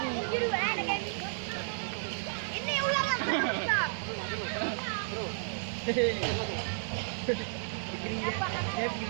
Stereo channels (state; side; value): silent; left; digital silence